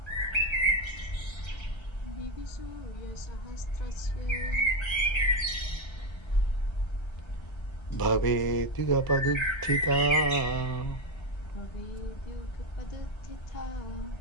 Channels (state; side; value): late; right; 1.3 ms